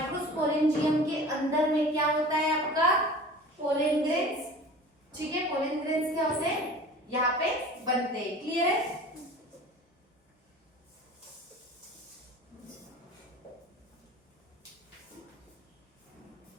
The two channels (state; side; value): normal; both; correlation 0.41